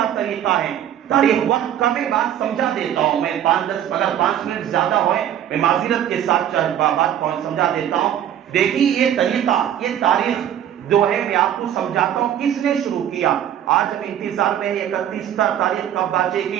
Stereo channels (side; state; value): left; quieter; 10.5 dB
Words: طریقہ ہے۔ تاریخ وقت کا میں بات سمجھا دیتا ہوں، میں 5-10 اگر 5 منٹ زیادہ ہوئے میں معذرت کے ساتھ بات سمجھا دیتا ہوں۔ دیکھیے یہ طریقہ، یہ تاریخ جو ہے میں آپ کو سمجھاتا ہوں کس نے شروع کیا۔ آج ہم انتظار میں 31 تاریخ کب باجے